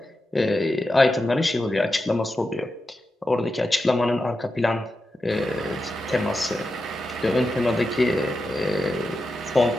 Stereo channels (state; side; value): normal; both; correlation 0.89